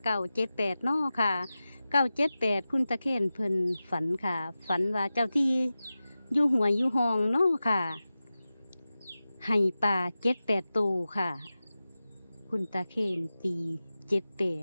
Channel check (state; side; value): inverted; both; correlation -0.95